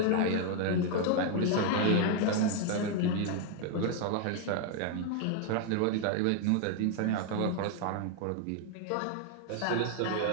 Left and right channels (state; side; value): different; both; correlation 0.00